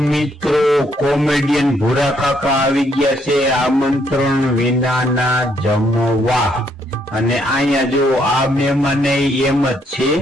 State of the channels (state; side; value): normal; both; correlation 0.71